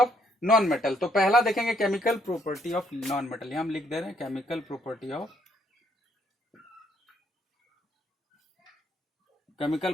non metal. तो पहला देखेंगे chemical property of non metal, यहां हम लिख दे रहे हैं chemical properties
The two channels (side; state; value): both; normal; correlation 0.70